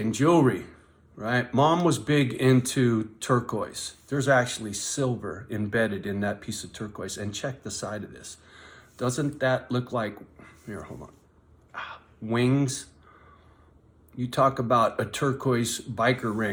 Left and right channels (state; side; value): identical; both; correlation 1.00